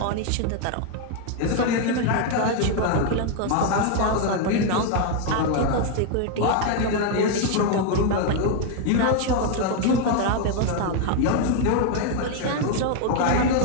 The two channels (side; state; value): both; different; correlation 0.01